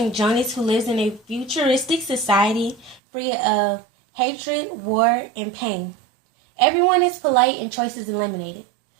Jonas who lives in a futuristic society free of hatred, war, and pain. Everyone is polite and choices eliminated.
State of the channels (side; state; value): left; drops out; at 3.0 s